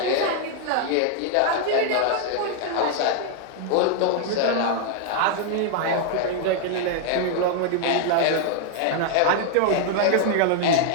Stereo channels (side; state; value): both; different; correlation 0.00